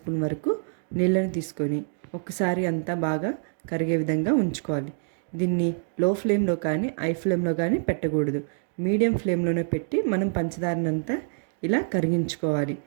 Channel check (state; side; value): silent; left; digital silence